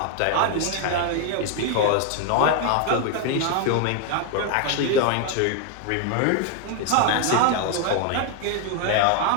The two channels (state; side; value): different; both; correlation 0.00